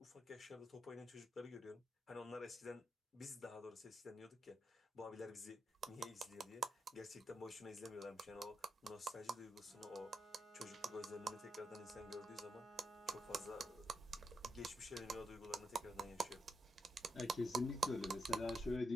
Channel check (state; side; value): normal; both; correlation 0.83